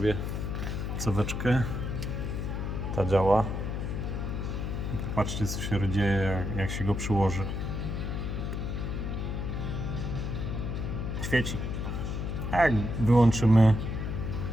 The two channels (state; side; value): noise; left; hum, 3 dB below the sound